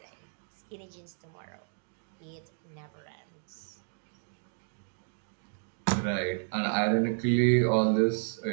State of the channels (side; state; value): left; silent; 56 dB below the other